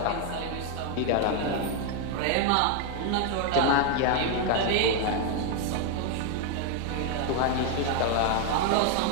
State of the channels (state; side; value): different; both; correlation 0.01